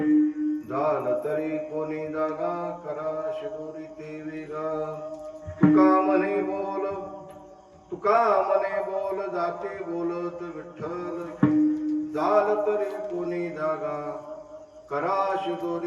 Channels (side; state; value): both; identical; correlation 1.00